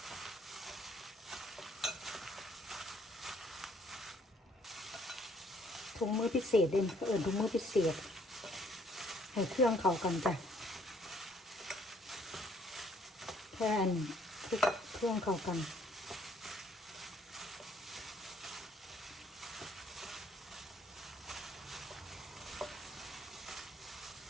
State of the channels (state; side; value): normal; both; correlation 0.64